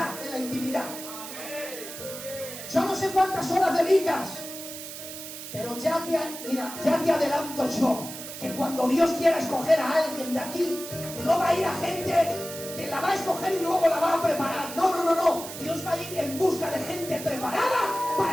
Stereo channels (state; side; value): noise; right; hiss, 10 dB below the sound